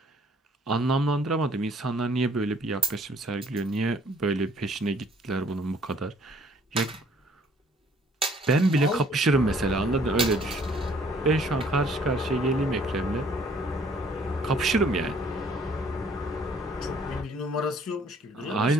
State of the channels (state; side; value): normal; both; correlation 0.60